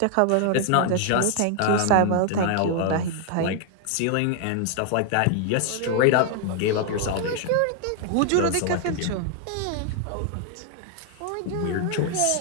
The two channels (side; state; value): both; different; correlation 0.00